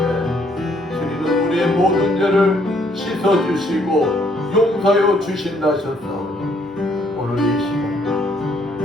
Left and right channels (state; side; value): normal; both; correlation 0.68